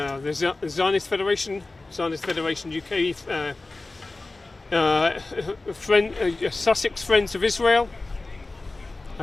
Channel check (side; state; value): right; quieter; 3.2 dB